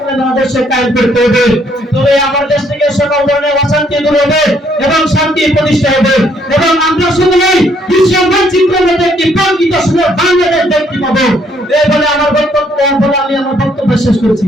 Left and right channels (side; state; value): both; normal; correlation 0.68